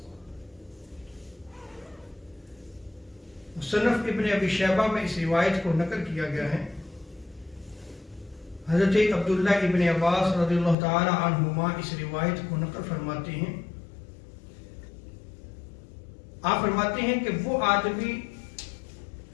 مصنف ابن ابی شیبہ میں اس روایت کو نقل کیا گیا ہے. حضرت عبداللہ ابن عباس رضی اللہ تعالی عنہما اس روایت کو نقل فرماتے ہیں. آپ فرماتے ہیں کہ وہ آدمی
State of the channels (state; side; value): drops out; right; at 10.8 s